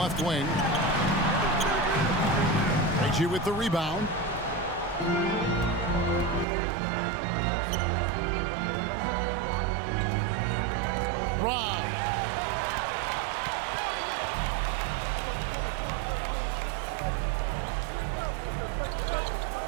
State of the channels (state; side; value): drops out; left; at 6.5 s